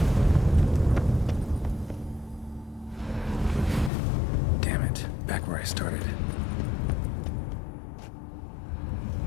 Damn it, back where I started.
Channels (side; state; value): right; drops out; at 3.9 s